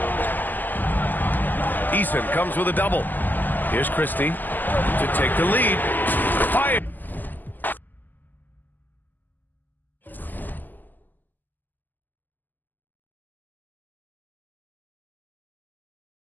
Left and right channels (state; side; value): late; right; 0.087 ms